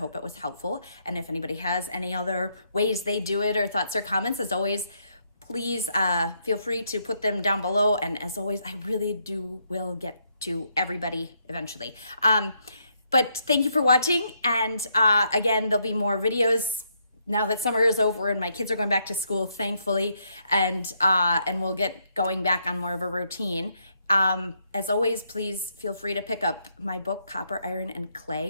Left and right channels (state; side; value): inverted; both; correlation -0.75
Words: it was helpful. And if anybody has any other ways they do it or thoughts or comments, as always, please feel free to put them down below. And as always, I really will get to everybody eventually. But thank you for watching. And again, there'll be more videos now that summer is over and my kids are going back to school, thankfully, and we'll get going back on more of a routine. As always, please feel free to pick up my book, Copper, Iron, and